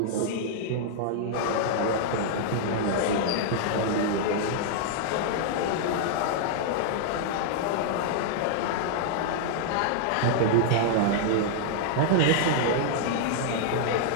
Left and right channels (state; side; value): different; both; correlation -0.01